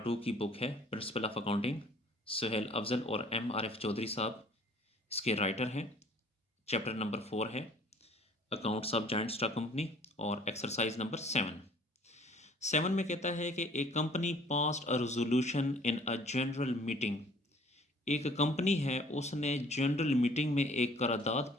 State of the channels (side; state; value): both; normal; correlation 0.54